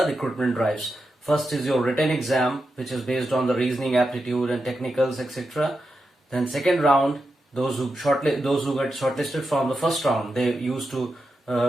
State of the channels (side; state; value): both; normal; correlation 0.88